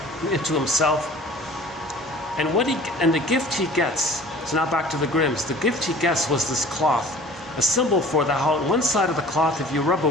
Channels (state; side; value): normal; both; correlation 0.46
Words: into himself. And the gift he gets, so now back to the Grimms, the gift he gets was this cloth, a symbol for that how on one side of the cloth, if you rub a